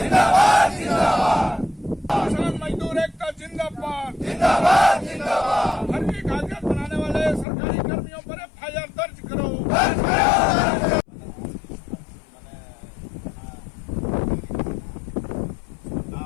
किसान मजदूर एकता जिंदाबाद, फर्जी कागजात बनाने वाले सरकारी कर्मियों पर FIR दर्ज करो।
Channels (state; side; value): drops out; right; at 7.5 s